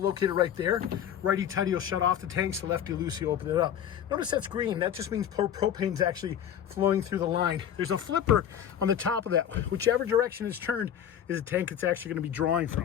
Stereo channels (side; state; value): right; quieter; 9.6 dB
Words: right there. Righty tighty will shut off the tanks, so lefty loosey open it up. Notice that's green. That just means propane's actually flowing through the line. There's a flipper on the top of that. Whichever direction it's turned is a tank it's actually going to be drawing